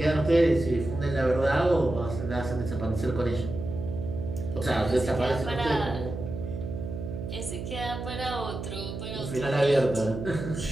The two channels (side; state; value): right; noise; hum, 7 dB below the sound